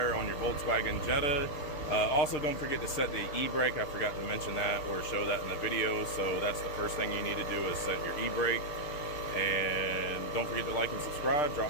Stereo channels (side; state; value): right; late; 6.6 ms